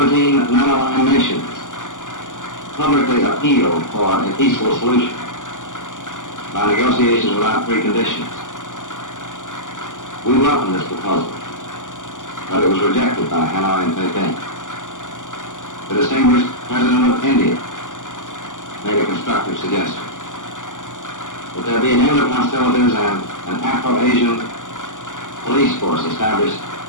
non-aligned nations publicly appealed for a peaceful solution by negotiations without preconditions. We welcomed this proposal, but it was rejected by Hanoi and Beijing. The distinguished President of India made a constructive suggestion that there be an end of hostilities and an Afro-Asian police force established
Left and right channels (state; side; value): late; right; 0.87 ms